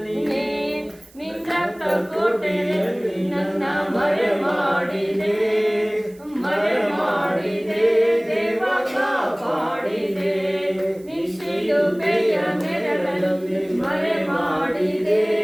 ನೀನೇ, ನಿನ್ನ ರಕ್ತ ಕೋಟೆಯಲ್ಲಿ ನನ್ನ ಮರೆ ಮಾಡಿದೆ, ಮರೆ ಮಾಡಿದೆ, ದೇವ ಕಾಪಾಡಿದೆ, ಶಿಲುಬೆಯ ನೆರಳಲ್ಲಿ ಮರೆ ಮಾಡಿದೆ,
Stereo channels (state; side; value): noise; right; hiss, 27 dB below the sound